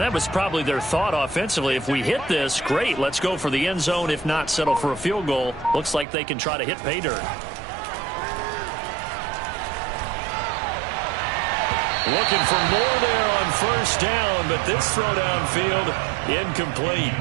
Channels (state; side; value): drops out; left; at 6.1 s